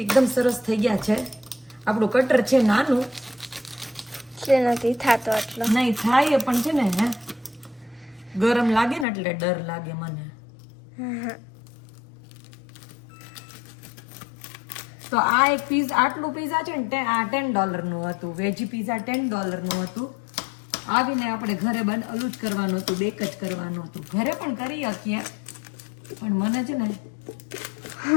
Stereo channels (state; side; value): drops out; right; at 9.1 s